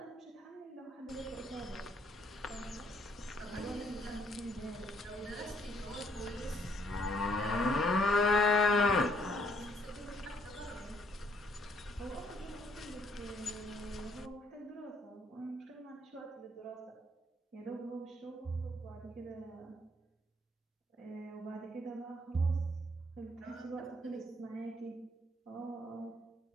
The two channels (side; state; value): both; normal; correlation 0.67